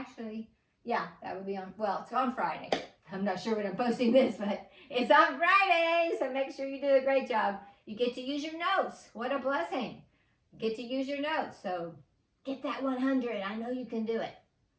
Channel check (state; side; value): identical; both; correlation 1.00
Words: yeah, that would be on, well, it's on Friday. I'm not sure when I'm posting this, but it's on Friday. So make sure you do a great job. You get to use your notes. What a blessing. You get to use your notes. So get that 100. I know you can do it.